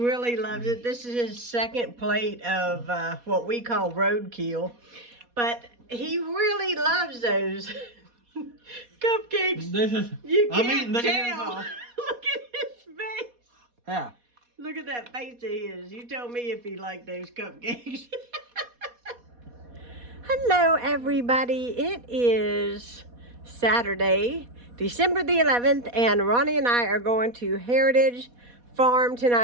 loves it. This is his second plate of what we call roadkill. But he really loves those cupcakes. This is, You I'm can't eating the tell. Look at his face. Yeah. Look at that face of his. You tell me if he liked those cupcakes. Hello, everybody. It is Saturday, December the 11th, and Ronnie and I are going to Heritage Farm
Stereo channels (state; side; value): late; left; 4.2 ms